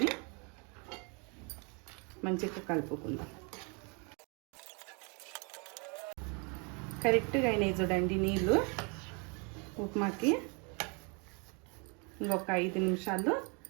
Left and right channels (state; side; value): quieter; left; 33.7 dB